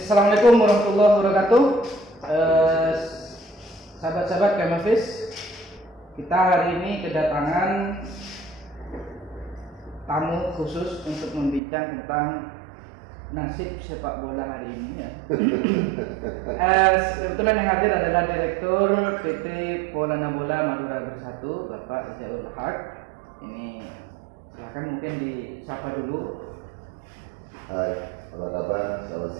warahmatullahi wabarakatuh. Sahabat-sahabat Kemafis, kita hari ini kedatangan tamu khusus untuk membincang tentang nasib sepak bola hari ini ya. Kebetulan yang hadir adalah Direktur PT Polana Bola Madura Bersatu, Bapak Izaul Haq. Ini silakan mungkin disapa dulu. Hai, apa kabar? Selamat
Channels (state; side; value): drops out; left; at 11.6 s